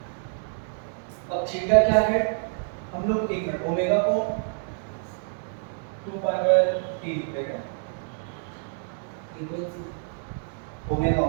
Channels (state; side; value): silent; left; 60 dB below the other